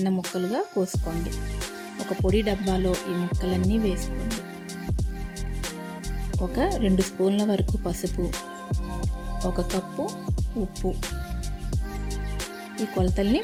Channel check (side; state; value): both; identical; correlation 1.00